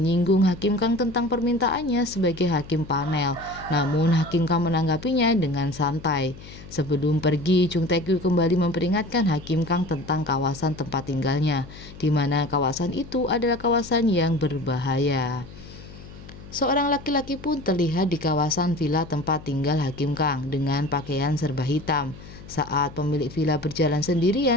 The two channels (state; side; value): noise; left; hum, 17 dB below the sound